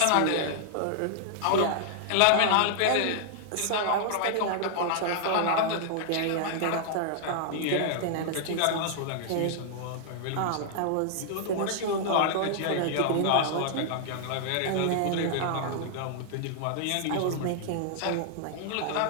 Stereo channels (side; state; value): both; different; correlation -0.01